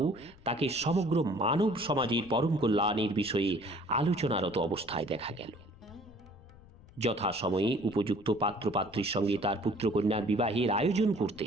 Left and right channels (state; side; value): noise; left; rumble, 23 dB below the sound